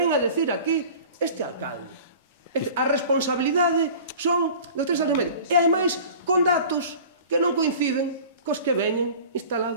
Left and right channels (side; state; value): both; inverted; correlation -0.42